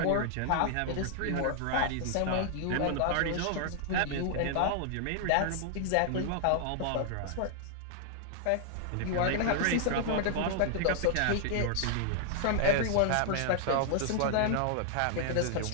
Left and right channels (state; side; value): different; both; correlation -0.01